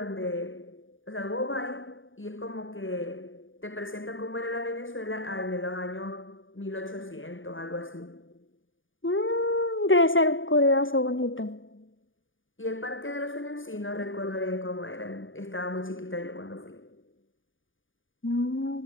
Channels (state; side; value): late; right; 0.57 ms